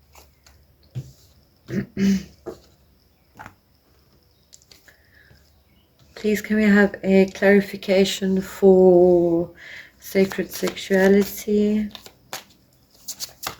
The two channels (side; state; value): both; identical; correlation 1.00